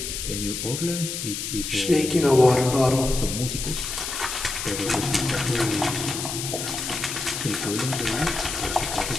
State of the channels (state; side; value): noise; left; hiss, 5 dB below the sound